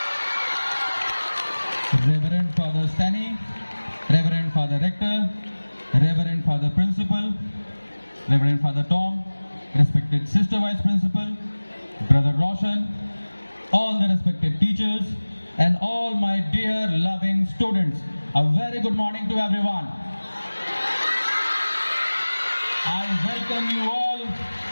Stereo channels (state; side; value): inverted; both; correlation -1.00